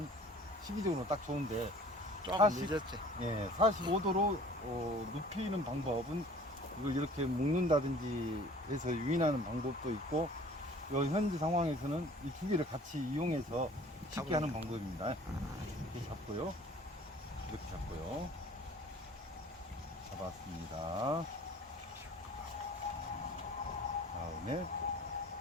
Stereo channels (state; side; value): normal; both; correlation 0.49